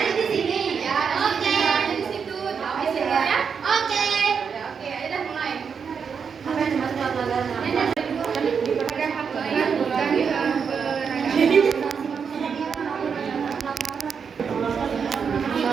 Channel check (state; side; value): quieter; left; 6.4 dB